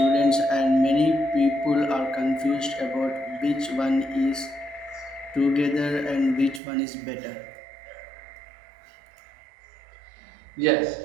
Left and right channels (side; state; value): left; drops out; at 6.6 s